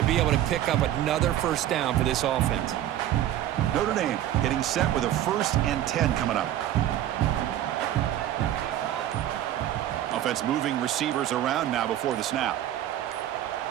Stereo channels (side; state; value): left; quieter; 12.3 dB